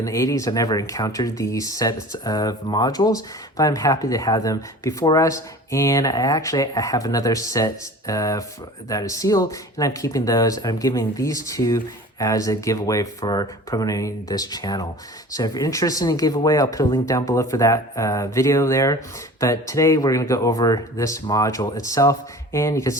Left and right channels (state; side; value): normal; both; correlation 0.41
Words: the 80s, I never encountered these sets of modules, but I'm happy to have them before us, and I have another set that is sealed, and I'm keeping those. I'm giving these two as a giveaway for promoting this channel. So if you're interested in a giveaway, I'll put a link down below for that video there. But today we're gonna go over this module itself, and you can